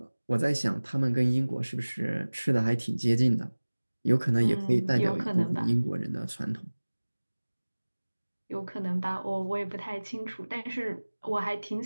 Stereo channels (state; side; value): inverted; both; correlation -1.00